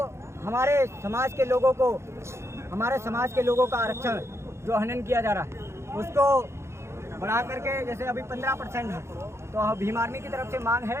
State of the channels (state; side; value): late; left; 0.13 ms